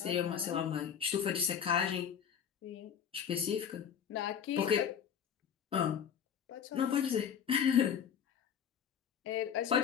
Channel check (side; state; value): right; quieter; 8.1 dB